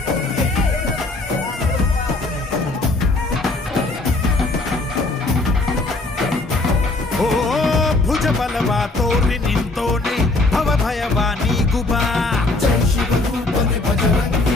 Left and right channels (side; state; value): right; quieter; 3.1 dB